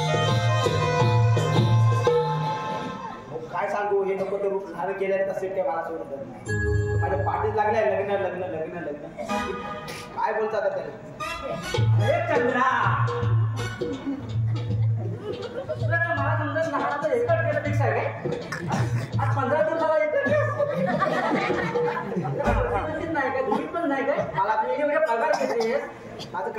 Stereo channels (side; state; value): both; identical; correlation 1.00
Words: काय सांगू हे नको ते रूप झालं केलं तसे ते मला सोडत नाही माझ्या पाठीत लागलाय लग्न लग्न लग्न लग्न काय बोलतात आता त्याला अरे चंद्रा तुला तर मला समजत लहानाचं एकच केलं पेक्षा आहे काय आज 15 दिवसाला एकच नाही काय तुम्ही पण नाही काय मला तुम्ही एवढे पगार घेतेस माझं